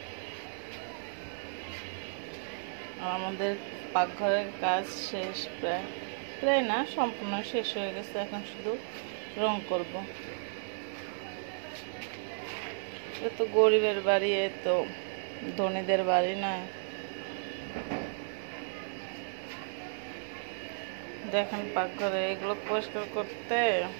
আর আমাদের পাকঘরের কাজ শেষ, প্রায় না, সম্পূর্ণ শেষ হয়ে গেছে। এখন শুধু রং করব। এ তো গরিবের বাড়ি, এ তো ধনীদের বাড়ি না। দেখেন পাকঘরে এগুলো পরিষ্কার করতে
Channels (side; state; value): left; silent; digital silence